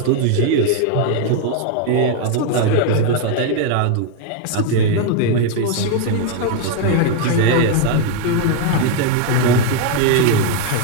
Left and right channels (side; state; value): both; different; correlation 0.01